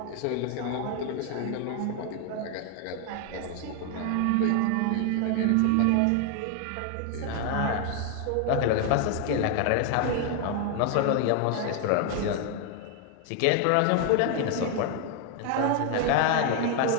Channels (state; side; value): different; both; correlation 0.00